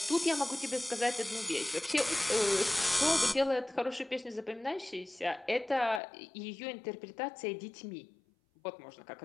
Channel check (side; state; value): right; drops out; at 6.0 s